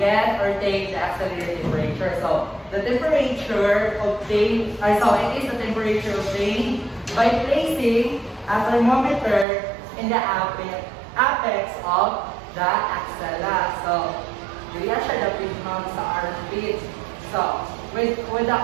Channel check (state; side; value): drops out; left; at 9.5 s